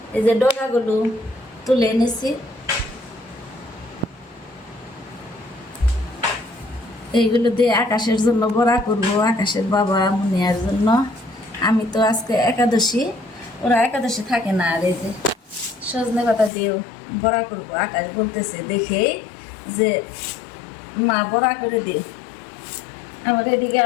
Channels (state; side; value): drops out; right; at 16.5 s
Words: এই যে ডগাগুলো তুলে এনেছি। এইগুলো দিয়ে আকাশের জন্য বড়া করবো, আকাশের বাবা মুনিয়ার জন্য। আমি তো আজকে একাদশী, ওরা একাদশী থাকে না। আর এই যে সজনে পাতা দিয়েও বড়া করবো। আকাশ বলতেছে দেখে যে মা বড়া করে দিও। আবার এদিকে